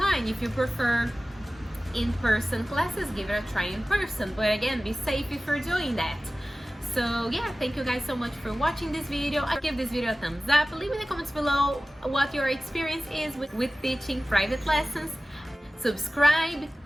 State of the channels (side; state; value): both; normal; correlation 0.96